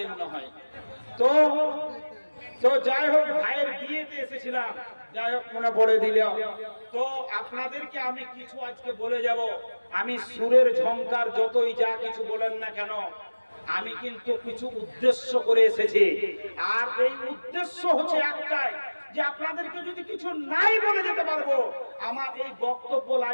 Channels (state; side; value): inverted; both; correlation -1.00